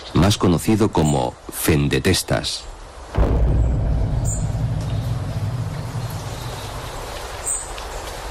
más conocido como Fendetestas.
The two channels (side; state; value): both; identical; correlation 1.00